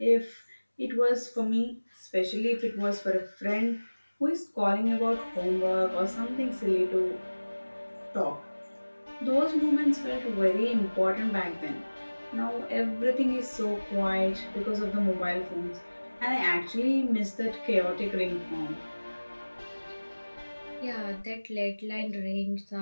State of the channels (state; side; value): inverted; both; correlation -1.00